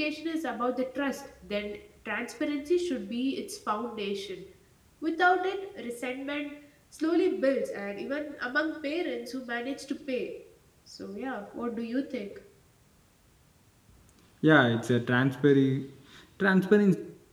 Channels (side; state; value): both; identical; correlation 1.00